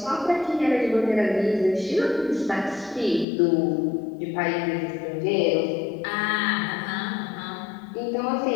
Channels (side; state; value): right; drops out; at 3.2 s